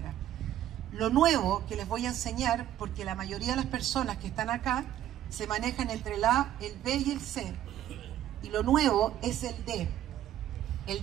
Lo nuevo que les voy a enseñar, porque la mayoría de las personas que están acá se manejan entre el A, el B y el C. Y lo nuevo es el D.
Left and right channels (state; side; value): quieter; left; 12.0 dB